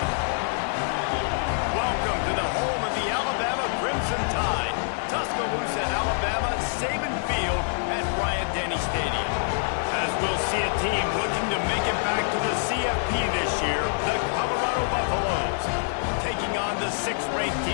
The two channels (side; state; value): right; silent; digital silence